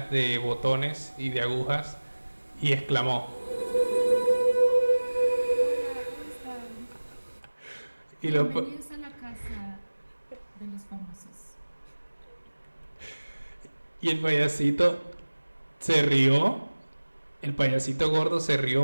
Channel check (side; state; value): both; inverted; correlation -1.00